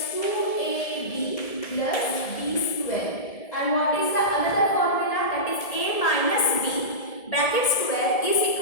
2ab plus b square. And what is the another formula? That is a minus b bracket square is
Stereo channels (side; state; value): right; late; 1.7 ms